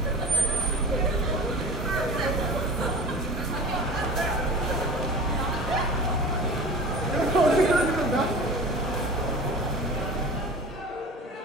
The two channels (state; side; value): normal; both; correlation 0.38